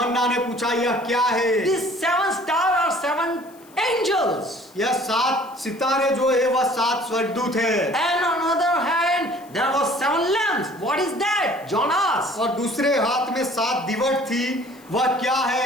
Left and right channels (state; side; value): noise; left; hiss, 27 dB below the sound